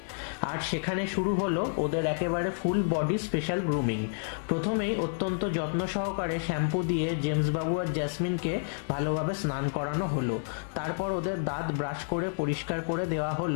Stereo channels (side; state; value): right; silent; digital silence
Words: আর সেখানে শুরু হলো ওদের একেবারে ফুল বডি স্পেশাল গ্রুমিং। প্রথমেই অত্যন্ত যত্ন সহকারে শ্যাম্পু দিয়ে জেমস বাবু আর জ্যাসমিনকে ভালোভাবে স্নান করানো হলো। তারপর ওদের দাঁত ব্রাশ করে পরিষ্কার করে দেওয়া